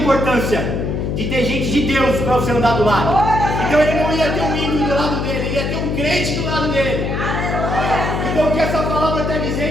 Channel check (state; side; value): noise; left; hum, 1 dB below the sound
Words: de ter gente de Deus para você andar do lado. Então ele não ia ter um ímpio do lado dele, ele ia ter um crente do lado dele. Então o que essa palavra está